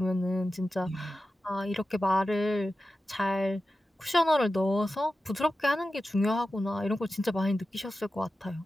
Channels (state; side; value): normal; both; correlation 0.93